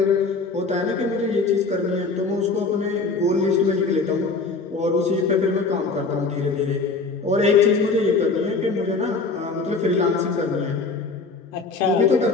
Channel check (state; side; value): quieter; right; 4.1 dB